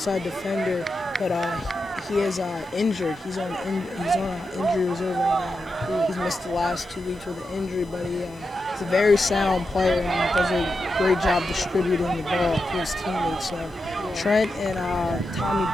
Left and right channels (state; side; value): normal; both; correlation 0.88